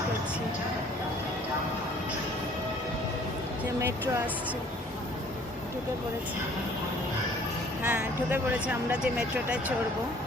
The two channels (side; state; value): both; normal; correlation 0.55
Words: করছি যে মেট্রো আসছে। ঢুকে পড়েছে, হ্যাঁ ঢুকে পড়েছে। আমরা যে মেট্রোটায় চড়বো